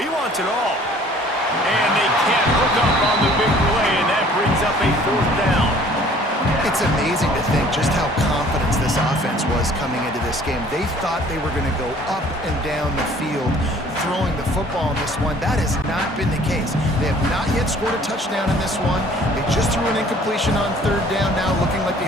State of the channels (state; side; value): normal; both; correlation 0.54